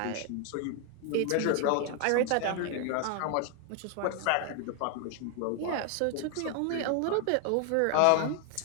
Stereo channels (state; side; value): different; both; correlation 0.00